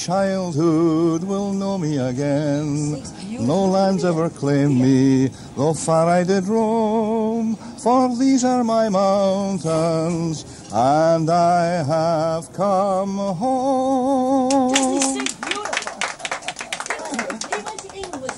will know me again. No lands ever claimed me, though far I did roam. For these are my mountains, and I have come home.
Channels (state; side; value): identical; both; correlation 1.00